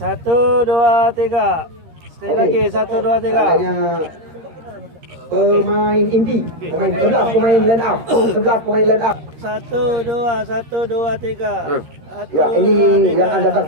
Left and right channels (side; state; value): left; late; 13 ms